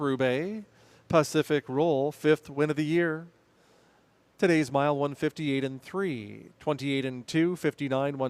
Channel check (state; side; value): identical; both; correlation 1.00